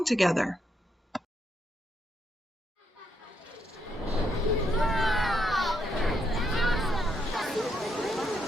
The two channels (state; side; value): normal; both; correlation 0.78